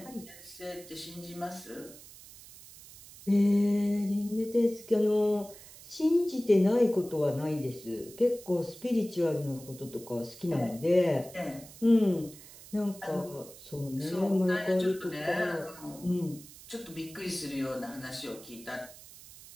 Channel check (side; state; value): right; noise; hiss, 18 dB below the sound